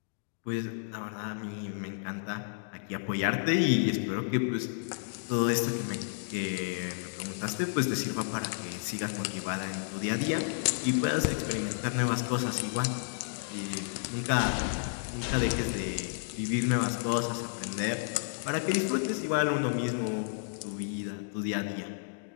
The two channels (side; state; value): right; silent; digital silence